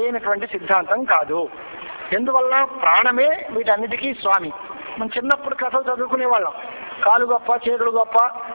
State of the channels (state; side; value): inverted; both; correlation -1.00